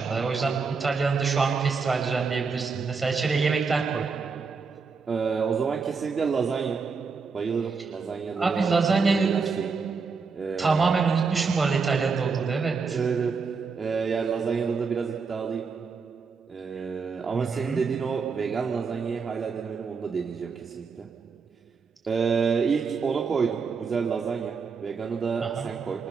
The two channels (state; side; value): quieter; left; 5.1 dB